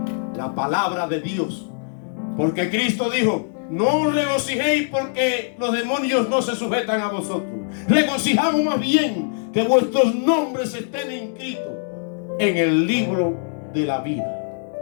la palabra de Dios. Porque Cristo dijo: no os regocijéis porque los demonios no se sujetan a vosotros. Regocijamos más bien que vuestros nombres estén inscritos en el libro de la vida.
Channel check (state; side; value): silent; right; digital silence